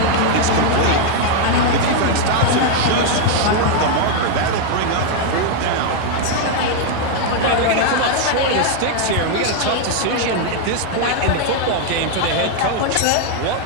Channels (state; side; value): different; both; correlation 0.00